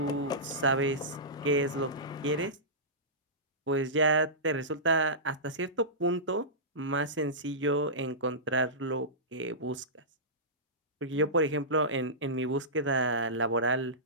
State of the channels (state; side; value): normal; both; correlation -0.18